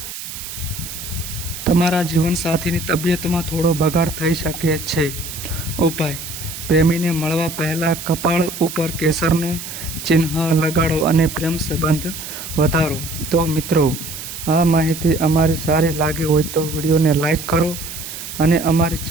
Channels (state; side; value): noise; right; hiss, 9 dB below the sound